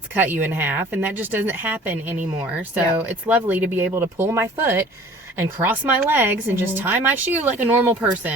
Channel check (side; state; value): both; normal; correlation 0.48